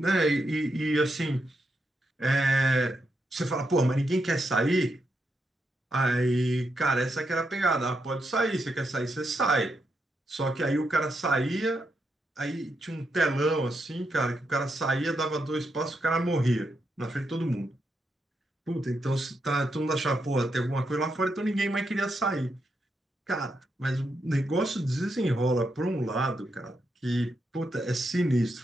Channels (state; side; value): normal; both; correlation 0.82